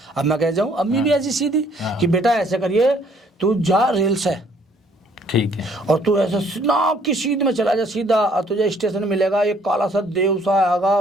अब मैं कह जाऊँ? अम्मी भी ऐसी सीधी कि बेटा ऐसे करिए, तू जा रेल से, ठीक है, और तू ऐसा ना कि सीध में चला जा सीधा, और तुझे स्टेशन मिलेगा एक काला सा देव सा आएगा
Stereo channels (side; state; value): both; normal; correlation 0.62